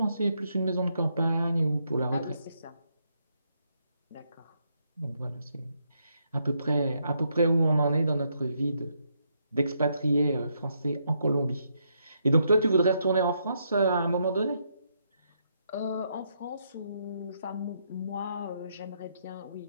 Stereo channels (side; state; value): both; inverted; correlation -0.77